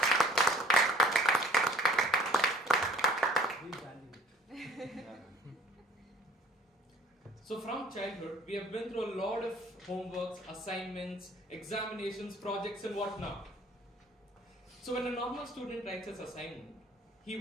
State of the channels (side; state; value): both; normal; correlation 0.55